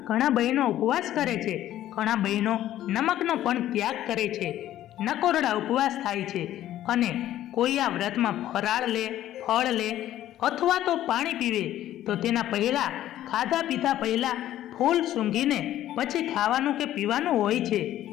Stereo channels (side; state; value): right; quieter; 12.9 dB